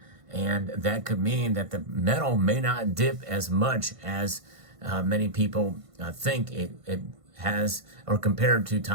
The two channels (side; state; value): left; late; 1.5 ms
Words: and that could mean that the metal may not dip as much as many people think it has, or compared to